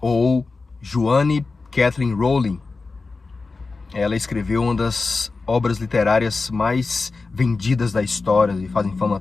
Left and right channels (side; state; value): right; quieter; 4.0 dB